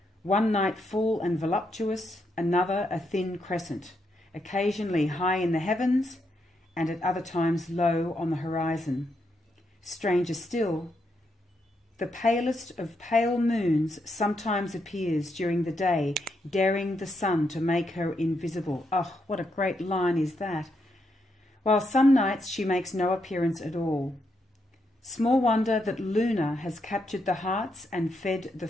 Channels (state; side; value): normal; both; correlation 0.80